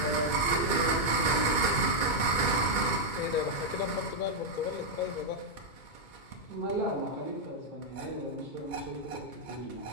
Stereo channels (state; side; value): late; right; 2.2 ms